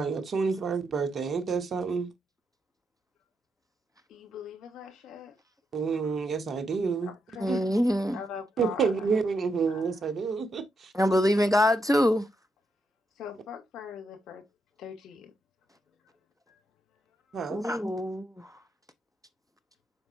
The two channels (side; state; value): both; normal; correlation 0.82